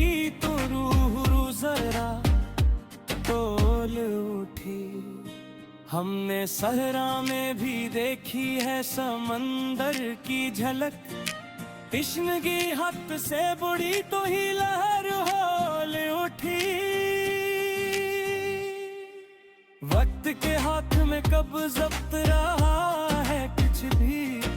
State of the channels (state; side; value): identical; both; correlation 1.00